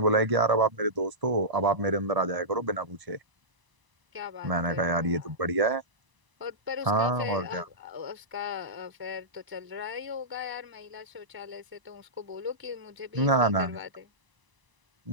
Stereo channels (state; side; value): late; left; 1.0 ms